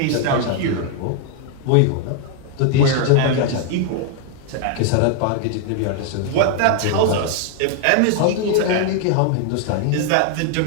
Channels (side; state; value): both; different; correlation 0.00